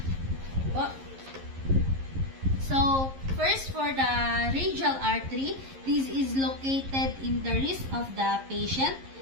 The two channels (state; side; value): late; left; 11 ms